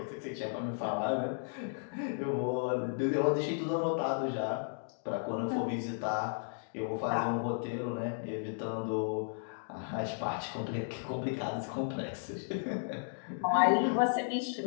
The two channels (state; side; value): silent; right; digital silence